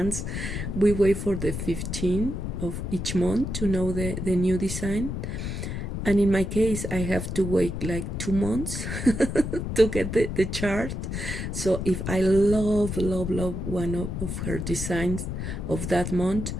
we wait for the 15th of each month to know the new design. And in my case, I have to wait like 2 months to get the chart. So if I love one of her designs of that month,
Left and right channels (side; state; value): left; noise; rumble, 4 dB below the sound